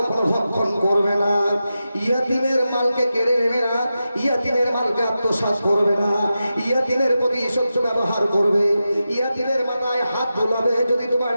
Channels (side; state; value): both; inverted; correlation -0.91